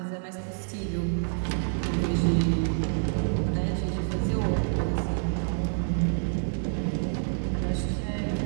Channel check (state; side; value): silent; left; 55 dB below the other